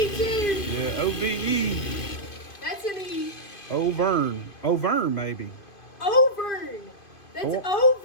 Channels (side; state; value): right; late; 2.5 ms